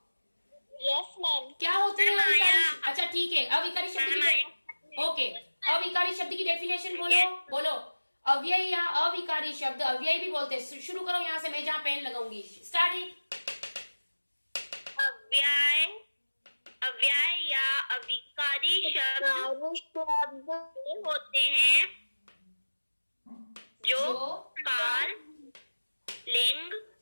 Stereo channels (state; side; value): inverted; both; correlation -1.00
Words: Yes ma'am. क्या होते हैं मैम, अविकारी? आया। अच्छा ठीक है, अविकारी शब्द मैम, की ओके, अविकारी शब्द की डेफिनेशन बोलो। बोलो अव्यय या अविकारी शब्द, अव्यय भी बोलते हैं। शुरू करो यहाँ से, मैं जहाँ पेन लगाऊंगी। Start it. अव्यय, अव्यय या अविकारी शब्द होते हैं जो काल, लिंग,